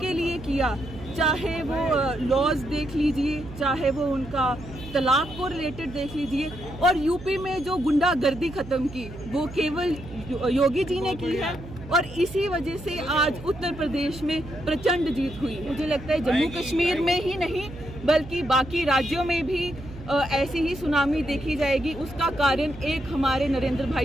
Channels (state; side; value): noise; right; hum, 14 dB below the sound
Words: लिए किया, चाहे वो लॉज देख लीजिए, चाहे वो उनका तलाक को रिलेटेड देख लीजिए, और यूपी में जो गुंडागर्दी खत्म की वो केवल योगी जी ने की है। और इसी वजह से आज उत्तर प्रदेश में प्रचंड जीत हुई। मुझे लगता है जम्मू कश्मीर में ही नहीं बल्कि बाकी राज्यों में भी ऐसी ही सुनामी देखी जाएगी। उसका कारण एक हमारे नरेंद्र